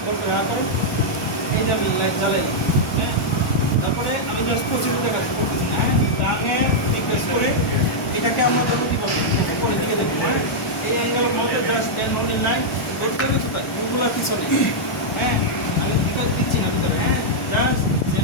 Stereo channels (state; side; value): normal; both; correlation -0.06